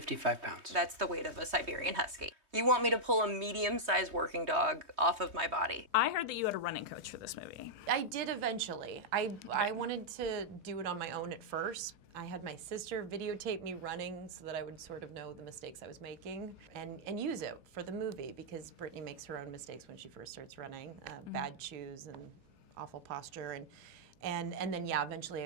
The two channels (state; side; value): late; left; 3.2 ms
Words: pounds. That's the weight of a Siberian Husky. You want me to pull a medium-sized working dog off of my body. I heard that you had a running coach for this movie. I did eventually. I wanted to do it on my own at first. I had my sister videotape me running so that I would sort of know the mistakes I was making and use it for the movie, because Brittany makes her own mistakes when she first starts running. Bad shoes and awful posture. And then, yeah, eventually